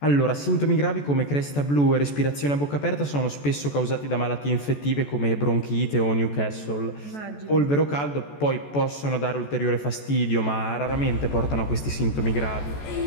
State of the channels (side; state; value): right; late; 14 ms